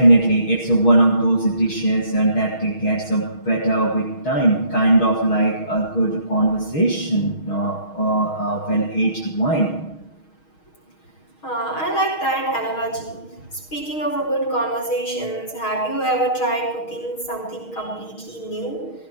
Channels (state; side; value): late; right; 6.4 ms